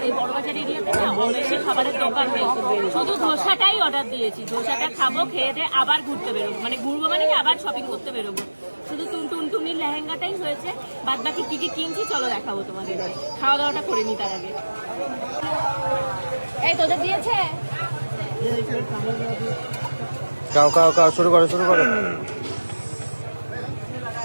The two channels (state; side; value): inverted; both; correlation -1.00